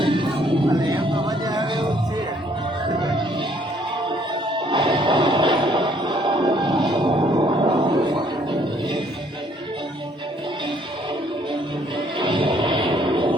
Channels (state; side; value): normal; both; correlation 0.64